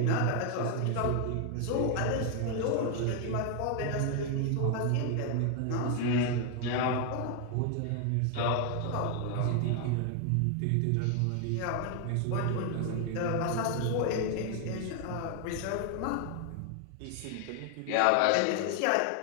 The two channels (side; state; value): both; different; correlation 0.00